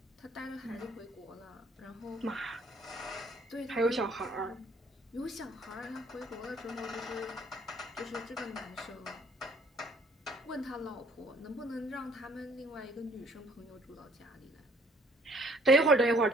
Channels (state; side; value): normal; both; correlation 0.60